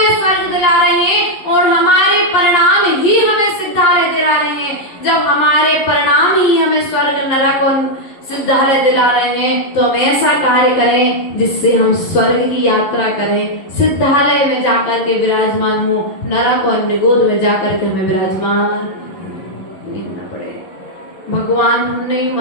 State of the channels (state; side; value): late; right; 11 ms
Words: स्वर्ग दिला रहे हैं और हमारे परिणाम ही हमें सिद्धालय दिला रहे हैं। जब हमारे परिणाम ही हमें स्वर्ग, नरक और सिद्धालय दिला रहे हैं तो हम ऐसा कार्य करें जिससे हम स्वर्ग की यात्रा करें, सिद्धालय में जाकर के विराजमान हो, नरक और निगोद में जाकर के हमें विराजमान नहीं होना पड़े। भगवान हमने ही